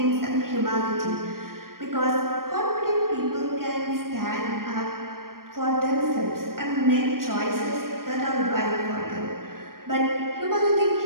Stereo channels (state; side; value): late; left; 0.92 ms